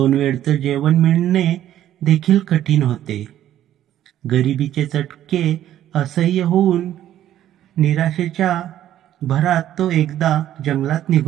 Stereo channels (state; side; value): quieter; left; 12.0 dB